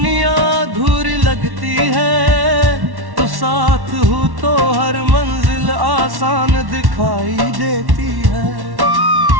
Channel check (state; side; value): late; left; 1.1 ms